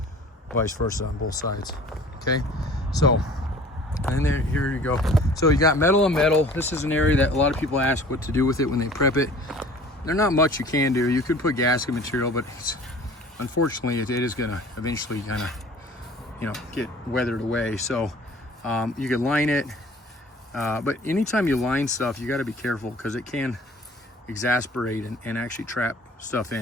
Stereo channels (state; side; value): normal; both; correlation 0.47